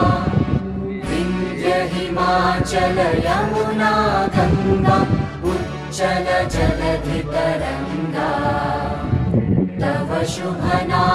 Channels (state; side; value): identical; both; correlation 1.00